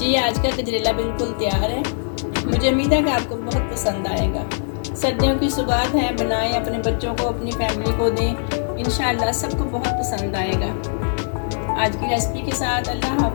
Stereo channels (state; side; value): silent; right; digital silence